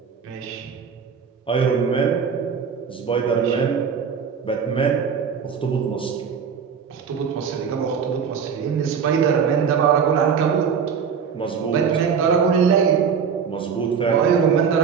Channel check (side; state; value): left; quieter; 6.6 dB